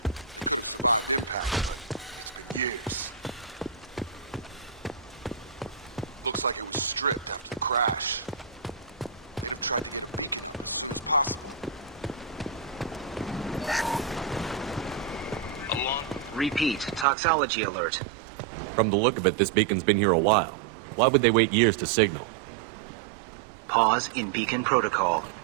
Repeat, toxology alert. From the look of it, this beacon's been here a while. Why would they wait years to signal? Pause in beacon protocol.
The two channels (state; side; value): drops out; left; at 17.1 s